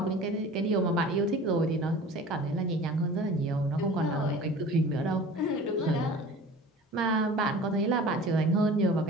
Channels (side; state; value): both; normal; correlation 0.41